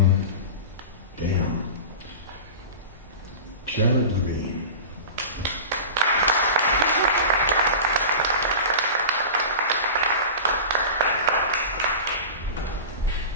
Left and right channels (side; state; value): both; inverted; correlation -0.32